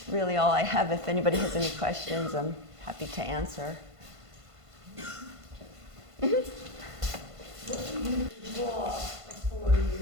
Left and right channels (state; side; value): late; left; 1.5 ms